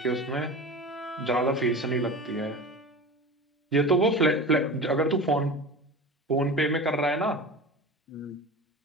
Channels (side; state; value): both; normal; correlation 0.32